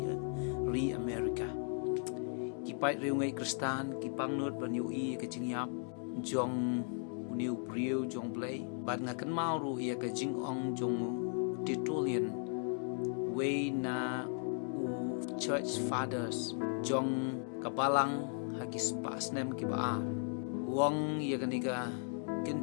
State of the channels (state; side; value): silent; right; 53 dB below the other